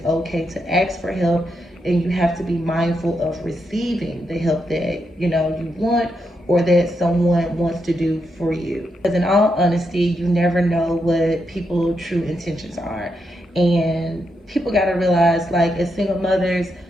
okay to ask for help, and you have to be mindful of receiving the help that, you know, you want or that someone wants to do for you. Because in all honesty, you never know what people's true intentions are. And people got to realize, like, as single mothers,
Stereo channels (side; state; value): both; normal; correlation 0.82